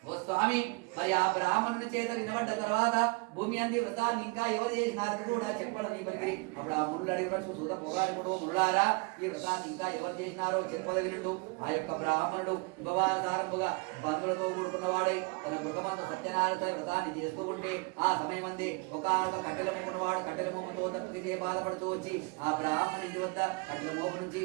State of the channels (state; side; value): quieter; left; 29.7 dB